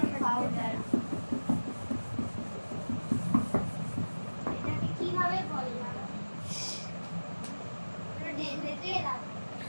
পাউডার এটাকে কিভাবে বললাম ঢেলে দিয়ে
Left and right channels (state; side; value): inverted; both; correlation -1.00